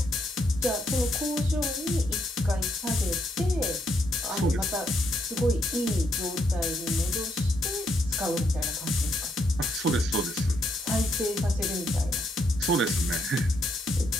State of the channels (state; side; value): normal; both; correlation 0.76